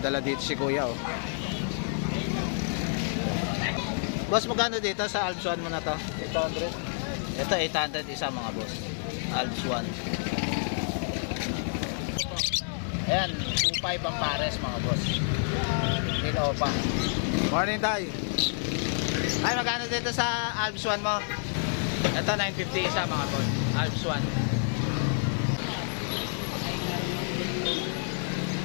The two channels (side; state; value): right; silent; 59 dB below the other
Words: dala dito si Kuya oh. Boss, magkano dito sa Alps 1 mo na to? 800. Ito 800 isa mga boss. Alps 1. Ayan, 2.5 ang pares mga boss. Hindi na opa. Morning tayo. Ay, magkano dito sa Alps 1 mo? Ito 950 isa mga boss. Alps 1.